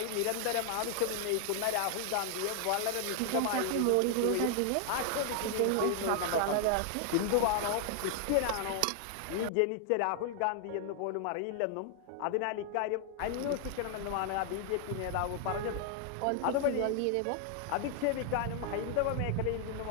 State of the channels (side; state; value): both; different; correlation 0.00